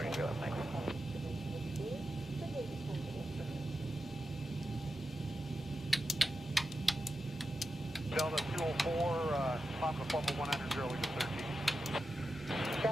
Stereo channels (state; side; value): normal; both; correlation 0.90